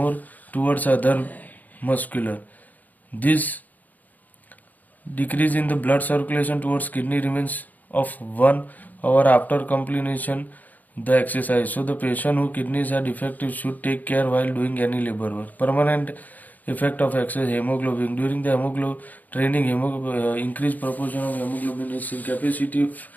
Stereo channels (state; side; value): late; right; 0.081 ms